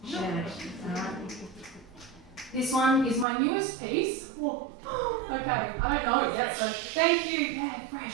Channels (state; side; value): drops out; left; at 3.2 s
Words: Share it. Alright? This one is my newest piece. Whoa. Okay, I don't know it yet, so thank you. Yeah,